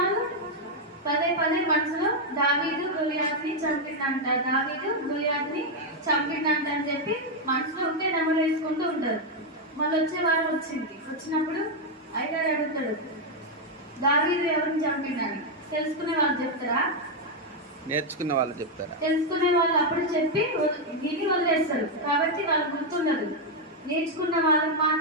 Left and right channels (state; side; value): normal; both; correlation 0.01